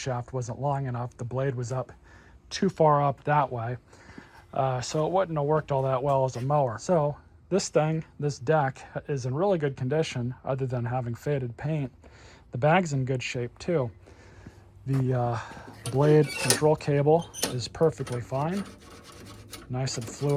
wasn't long enough. The blade was up too far up that way. So it wouldn't have worked all that well as a mower. So this thing, this deck, is in really good condition other than having faded paint. The bag's in good shape too. The blade control cable is perfectly fine. Nice and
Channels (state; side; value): identical; both; correlation 1.00